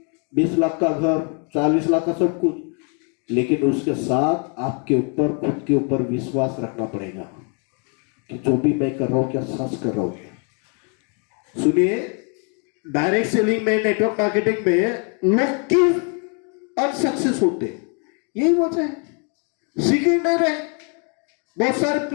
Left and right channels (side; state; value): right; quieter; 38.4 dB